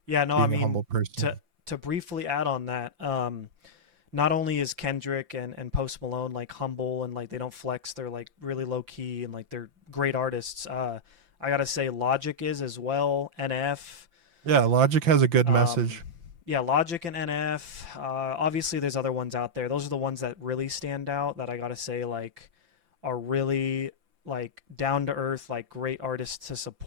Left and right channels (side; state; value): left; late; 5.9 ms